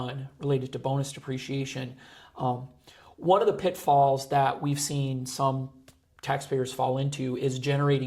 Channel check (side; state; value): both; identical; correlation 1.00